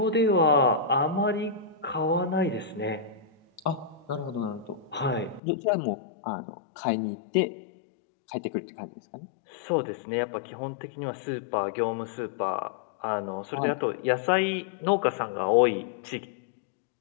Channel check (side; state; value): right; drops out; at 5.4 s